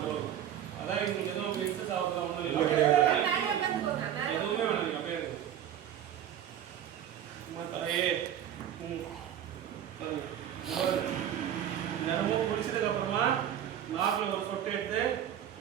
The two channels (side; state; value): left; quieter; 10.3 dB